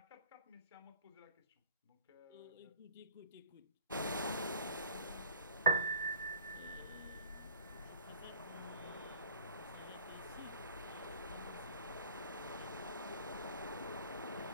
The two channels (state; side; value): inverted; both; correlation -0.46